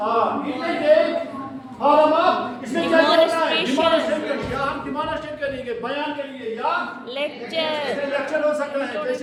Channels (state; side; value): identical; both; correlation 1.00